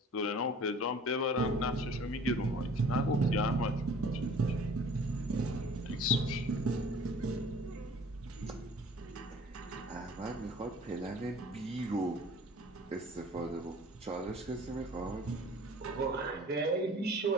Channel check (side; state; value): both; normal; correlation 0.49